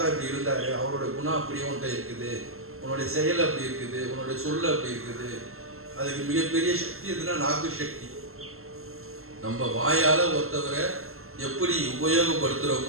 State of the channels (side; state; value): left; late; 0.62 ms